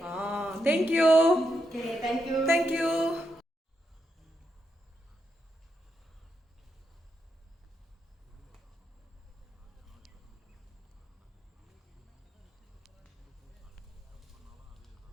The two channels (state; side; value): normal; both; correlation 0.82